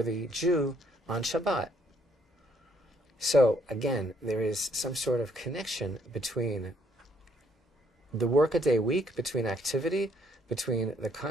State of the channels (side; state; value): both; normal; correlation 0.67